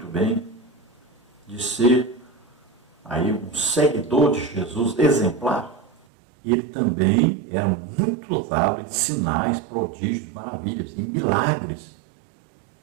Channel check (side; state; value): left; drops out; at 6.0 s